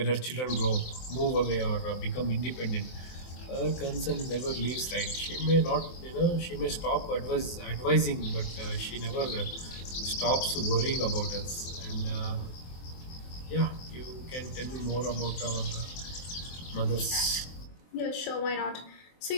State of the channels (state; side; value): late; right; 23 ms